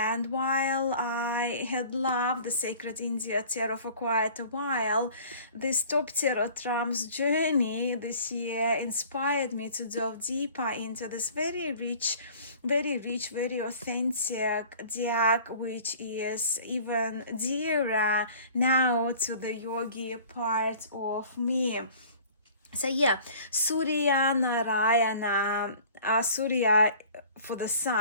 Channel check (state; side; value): inverted; both; correlation -0.48